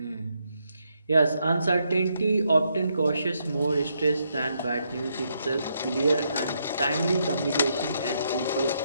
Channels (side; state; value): both; inverted; correlation -0.77